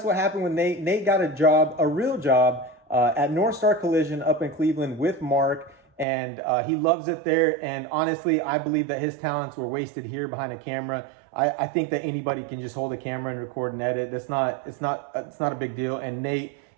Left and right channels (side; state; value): left; drops out; at 6.1 s